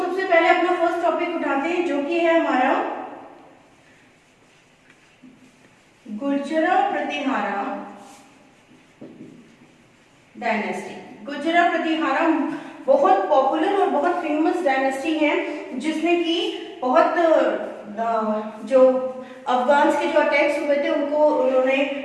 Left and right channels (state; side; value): identical; both; correlation 1.00